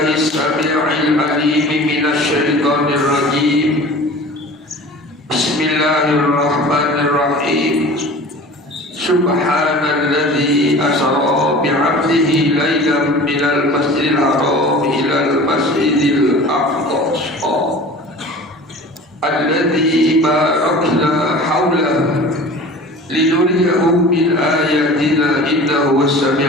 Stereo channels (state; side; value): normal; both; correlation 0.40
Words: as-sami'il 'alim minasy syaithanir rajim. Bismillahirrahmanirrahim. Subhanalladzi asra bi'abdihi lailan minal masjidil haram ilal masjidil aqsa alladzi barakna hawlahu linuriyahu min ayatina innahu